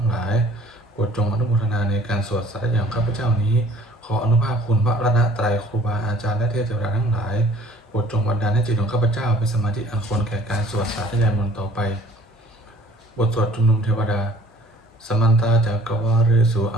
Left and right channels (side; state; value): both; normal; correlation 0.54